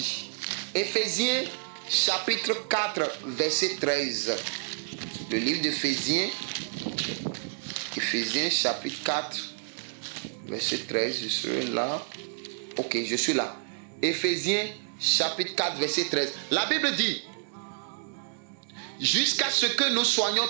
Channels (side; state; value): left; silent; digital silence